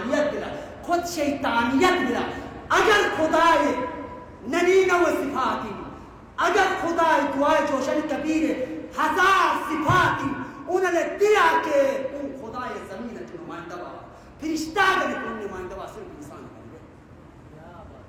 بلا خود شیطانیت بلا اگر خدا ننین و صفاتی اگر خدا دعائے جوشن کبیر ہزار صفاتی انہوں نے دیا کہ ان خدا زمین کے نمائندہ با فرشتہ گنے ان نمائندہ با صرف انسان بن گئے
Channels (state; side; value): identical; both; correlation 1.00